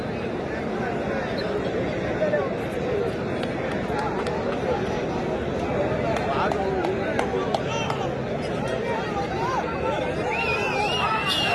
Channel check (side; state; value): both; identical; correlation 1.00